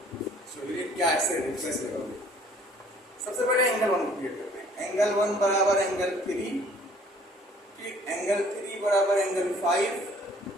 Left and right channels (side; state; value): both; normal; correlation 0.56